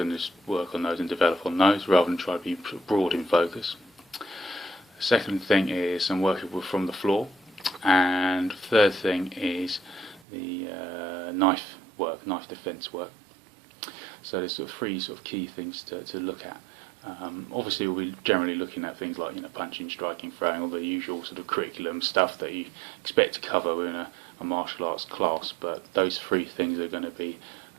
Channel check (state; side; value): drops out; left; at 10.2 s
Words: just work on those and develop on those rather than try to be broad in focus. The second thing is some work from the floor, and the third thing is the knife defence work. So there's sort of three sort of key things to look at. Obviously we'll be generally looking at things like punching, striking, throwing, all the usual sort of curriculum stuff that you expect to cover within a martial arts class, but those three things are going to be